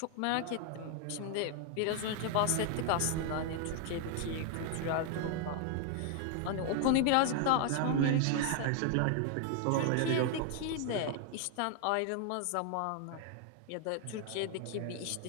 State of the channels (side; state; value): both; different; correlation 0.00